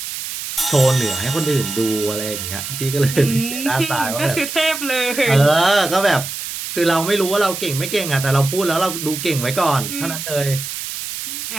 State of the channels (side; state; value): right; noise; hiss, 7 dB below the sound